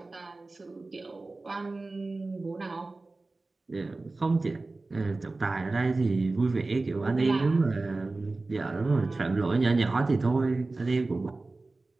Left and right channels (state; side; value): quieter; left; 3.3 dB